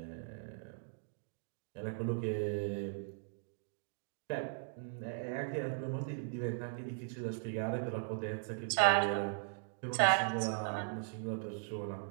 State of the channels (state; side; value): silent; left; digital silence